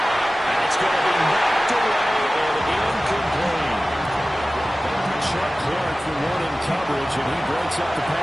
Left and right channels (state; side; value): normal; both; correlation 0.96